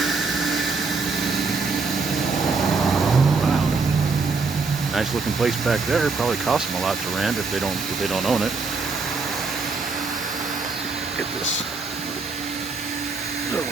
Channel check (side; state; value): left; quieter; 4.3 dB